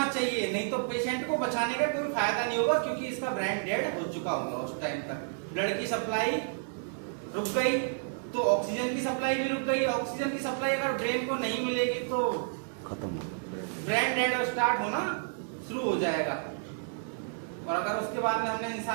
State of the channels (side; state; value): left; silent; 57 dB below the other